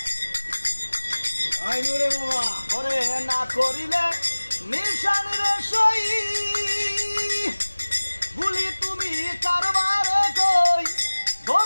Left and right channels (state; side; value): inverted; both; correlation -1.00